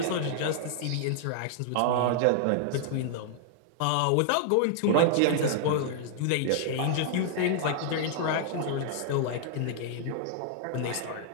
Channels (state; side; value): different; both; correlation -0.01